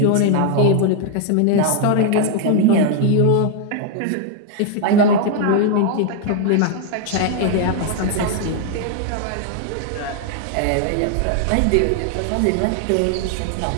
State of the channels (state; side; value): different; both; correlation 0.00